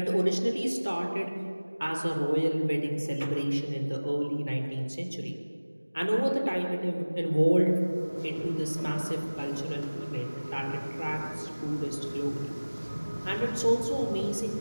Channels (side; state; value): both; inverted; correlation -1.00